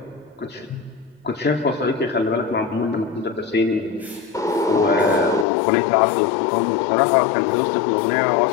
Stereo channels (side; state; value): right; drops out; at 5.5 s